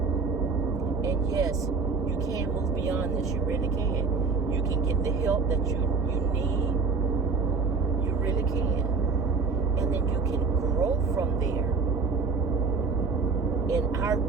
And yes, you can move beyond this. You really can. You can get the help that you need, you really can. And then you can grow from there. In our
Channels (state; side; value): quieter; left; 4.6 dB